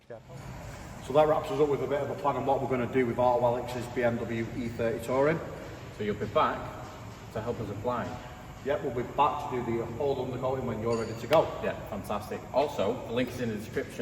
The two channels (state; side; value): identical; both; correlation 1.00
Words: Yeah. So that wraps us up with a bit of a plan on what we're going to do with Auto Alex's BMW E30 Touring. So you'll be back to help us apply. Yep, we'll be back to do the whole undercoating when you're ready to go. Yeah, fantastic. Also, the link is in the